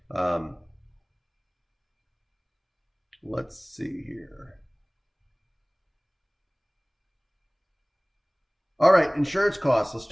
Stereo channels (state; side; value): identical; both; correlation 1.00